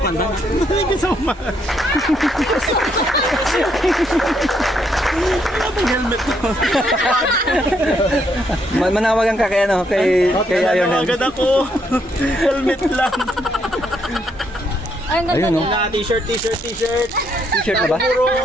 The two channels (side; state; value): both; normal; correlation 0.74